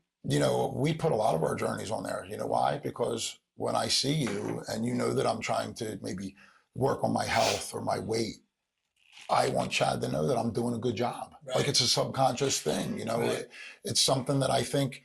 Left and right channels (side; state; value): both; identical; correlation 1.00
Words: we put a lot of our journeys on there. You know why? Because when I see you and that I'm trying to maybe work on my health or my weight, I want Chad to know that I'm doing a good job. Right. Like it's a subconscious thing, Right. It's something that I think